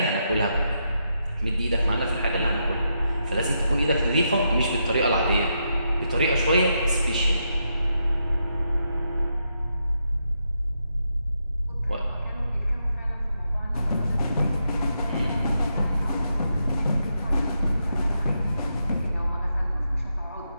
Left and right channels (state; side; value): inverted; both; correlation -0.82